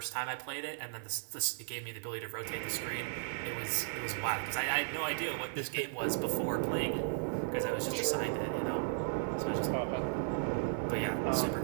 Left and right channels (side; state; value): left; silent; 54 dB below the other